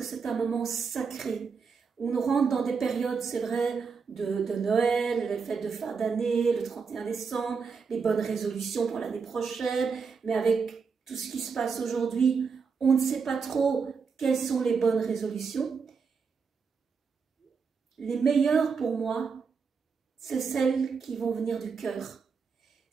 c'est un moment sacré. On rentre dans des périodes, c'est vrai, de Noël, les fêtes de fin d'année, le 31 décembre, les bonnes résolutions pour l'année prochaine, mais avec tout ce qui se passe aujourd'hui, on ne sait pas trop quelles sont les bonnes résolutions. Les meilleures pour moi, c'est celles qui vont venir du cœur,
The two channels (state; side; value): quieter; left; 5.5 dB